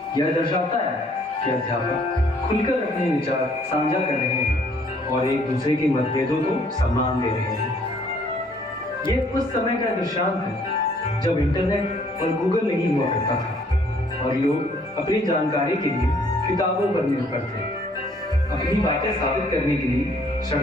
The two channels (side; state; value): both; normal; correlation 0.62